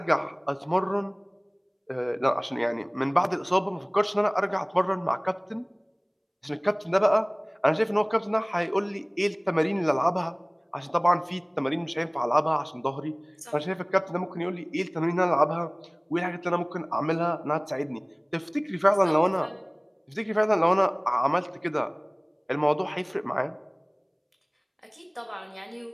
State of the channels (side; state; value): both; identical; correlation 1.00